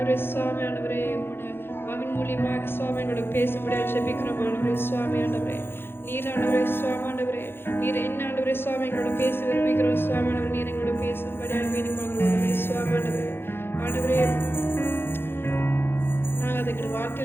சுவாமி ஆண்டவரே, உங்களுடைய மகன் மூலியமாக சுவாமி எங்களோட பேச முடியாது ஜெபிக்கிறோம் ஆண்டவரே. சுவாமி ஆண்டவரே, நீர் ஆண்டவரே சுவாமி ஆண்டவரே, நீர் என்ன ஆண்டவரே சுவாமி எங்களோட பேச விரும்புகிறோம் சுவாமி ஆண்டவரே. நீர் எங்களோட பேசும்படி வேண்டிக் கொள்கிறோம் ஆண்டவரே. சுவாமி ஆண்டவரே, ஆண்டவரே நாங்கள் அதுக்கு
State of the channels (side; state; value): right; late; 0.11 ms